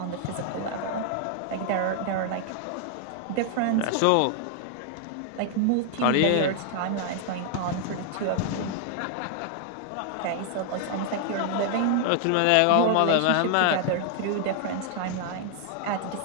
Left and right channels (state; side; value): different; both; correlation 0.00